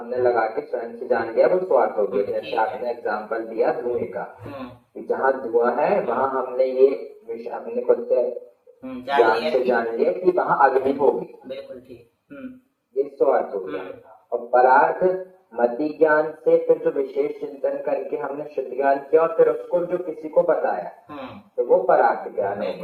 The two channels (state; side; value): identical; both; correlation 1.00